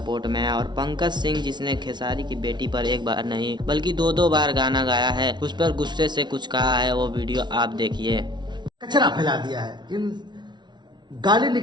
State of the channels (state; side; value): late; left; 0.21 ms